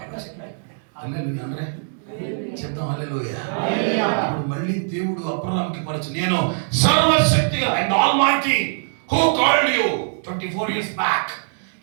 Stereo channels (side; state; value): left; silent; digital silence